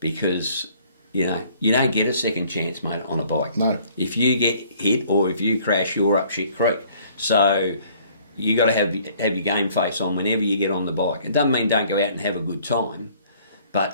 because, you don't get a second chance, mate, on a bike. No. If you get hit or if you crash, you're up shit creek. So you got to have your game face on whenever you get on the bike. It doesn't mean don't go out and have a good time, but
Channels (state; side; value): inverted; both; correlation -0.58